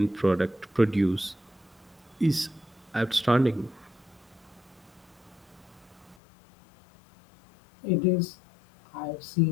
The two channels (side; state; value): right; drops out; at 6.2 s